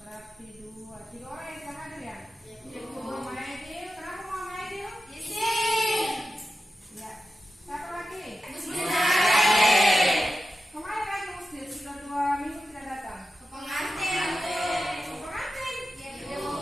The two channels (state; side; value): normal; both; correlation 0.92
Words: dua. Tiga orang yang tidak hadir ya? Iya, Bu. Muhammad Aidil. Kenapa Muhammad Aidil? Isin. Ya. Satu lagi? Bismillahirrahmanirrahim. Kemarin lagi Muslim sudah 2 minggu tidak datang. Pengantin, Bu. Pengantin? Iya, Bu.